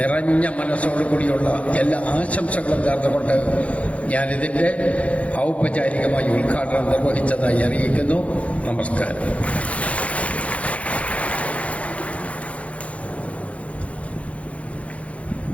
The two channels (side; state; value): right; late; 0.064 ms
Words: മനസ്സോടുകൂടിയുള്ള എല്ലാ ആശംസകളും നേർന്നുകൊണ്ട് ഞാനിതിൻ്റെ ഔപചാരികമായി ഉദ്ഘാടനം നിർവഹിച്ചതായി അറിയിക്കുന്നു. നമസ്കാരം.